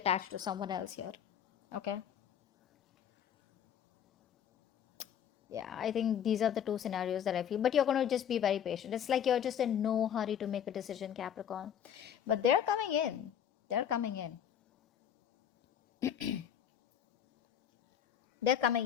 to someone else here. Okay. Yeah, I think these are the two scenarios that I feel. But you're going to just be very patient. It's like you're just in no hurry to make a decision, Capricorn. But they're coming in. They're coming in. They're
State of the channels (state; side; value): quieter; right; 9.1 dB